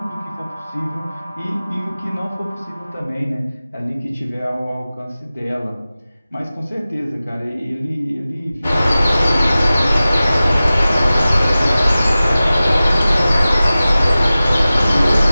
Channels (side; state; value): both; inverted; correlation -0.96